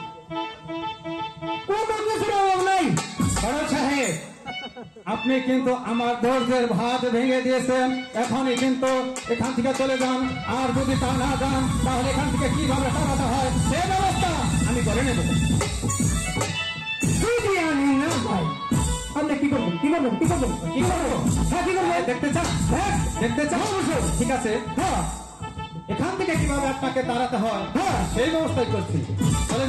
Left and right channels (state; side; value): identical; both; correlation 1.00